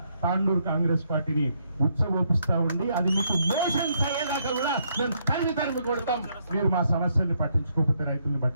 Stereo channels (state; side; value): inverted; both; correlation -0.74